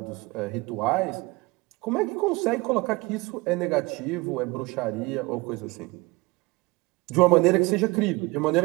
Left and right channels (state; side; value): quieter; left; 23.7 dB